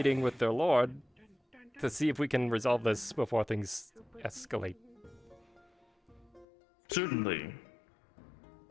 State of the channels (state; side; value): drops out; right; at 6.5 s